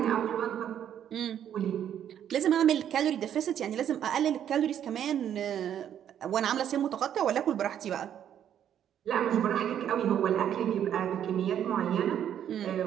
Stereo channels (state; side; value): quieter; left; 9.8 dB